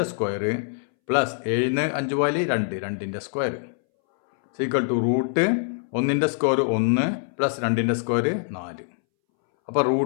സ്ക്വയർ പ്ലസ് 7 5 പോയാൽ 2 2ന്റെ സ്ക്വയർ ഈക്വൽ ടു √1ന്റെ സ്ക്വയർ 1 പ്ലസ് 2ന്റെ സ്ക്വയർ 4. അപ്പോൾ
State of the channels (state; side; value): silent; right; 62 dB below the other